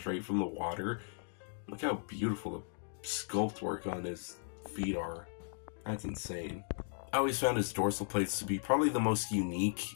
from the water. Look how beautiful the sculpt work on his feet are. That's insane. I always found his dorsal plates to be probably the most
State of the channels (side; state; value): right; silent; digital silence